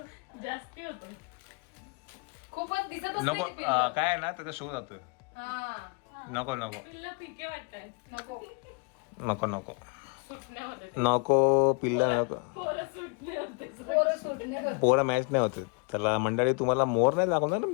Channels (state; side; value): quieter; right; 33.7 dB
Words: जास्ती होतो. खूपच दिसतच नको, नाही ते पिल्लं. काय आहे ना त्याचा शो जातो. हा नको नको पिल्ला फिके वाटतात. नको. नको नको सुटण्या होते. नको पिल्ला नको. पोरं सुटले होते. पोरं सुटणे. पोरं मॅच नाही होते त्याला. मंडळी तुम्हाला मोर नाही दाखवणार ना